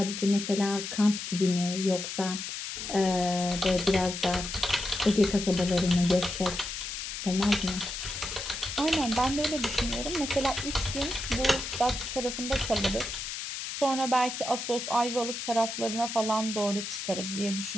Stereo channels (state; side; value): noise; left; hiss, 6 dB below the sound